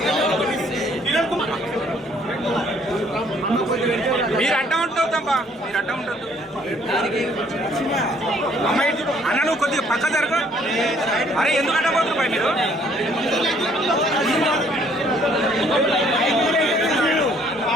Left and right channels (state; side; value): normal; both; correlation 0.62